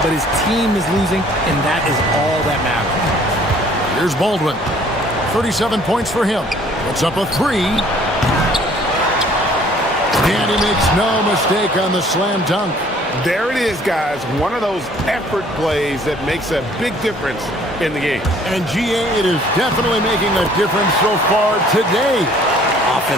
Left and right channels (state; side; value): normal; both; correlation 0.57